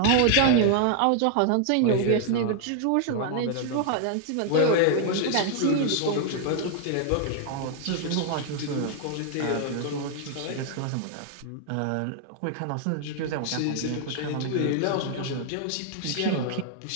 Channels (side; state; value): both; different; correlation 0.00